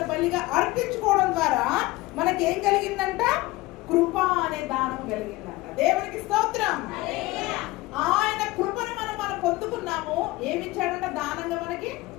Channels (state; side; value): quieter; right; 19.6 dB